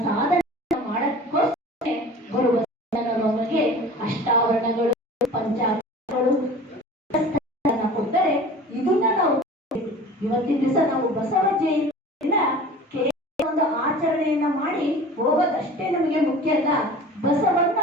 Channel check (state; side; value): normal; both; correlation 0.40